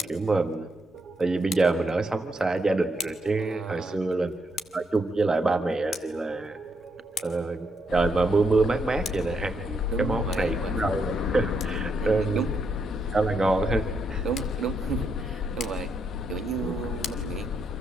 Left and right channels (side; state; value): both; normal; correlation 0.78